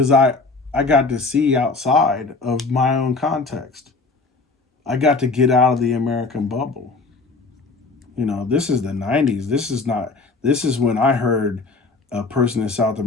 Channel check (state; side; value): quieter; right; 3.8 dB